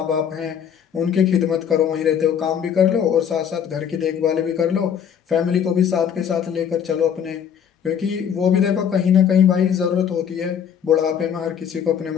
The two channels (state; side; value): quieter; right; 8.3 dB